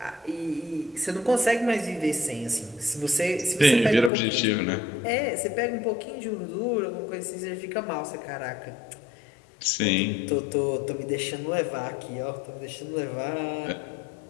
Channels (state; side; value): drops out; right; at 4.1 s